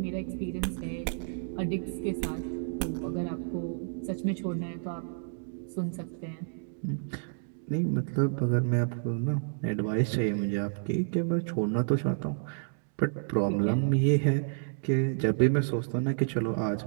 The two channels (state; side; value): silent; left; digital silence